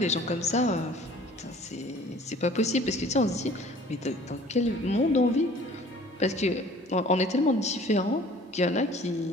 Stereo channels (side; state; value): both; normal; correlation 0.51